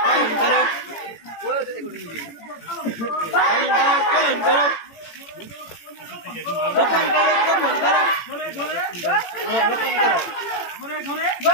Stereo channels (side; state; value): right; late; 18 ms